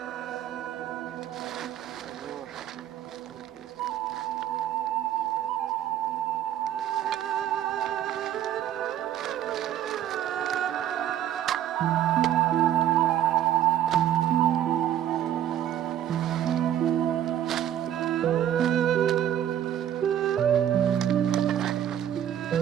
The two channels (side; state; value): left; quieter; 11.1 dB